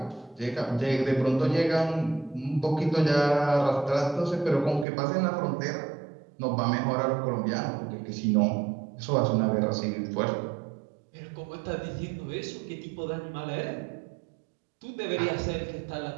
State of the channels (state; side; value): drops out; left; at 4.9 s